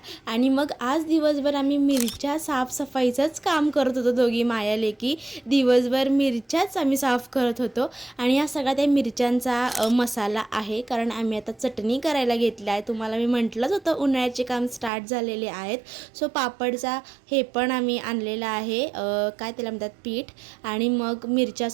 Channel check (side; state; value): left; drops out; at 14.9 s